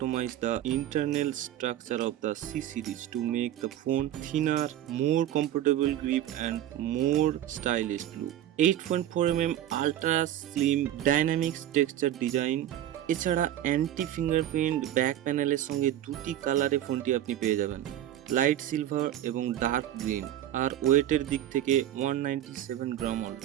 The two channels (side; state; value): left; quieter; 12.1 dB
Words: the internal structure of the C series to make the phone thinner, more comfortable grip and more stylish look. 8.4mm ultra slim dynamics texture design এছাড়া anti fingerprint back প্যানেলের সঙ্গে দুটি কালারে ফোনটি আপনি পেয়ে যাবেন, light silver এবং ডার্ক গ্রিন। আর ওয়েটের দিক থেকে 197 গ্রাম